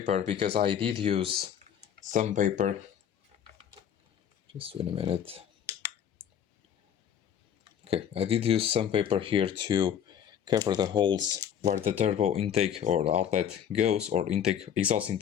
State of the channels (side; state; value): right; quieter; 9.0 dB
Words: because I did use some paper. Just wait a minute. Okay, I did use some paper here to cover the holes where the turbo intake or outlet goes, or exhaust